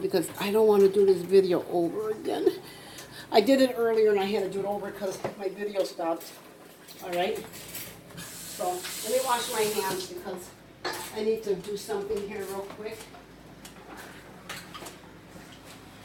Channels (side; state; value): both; identical; correlation 1.00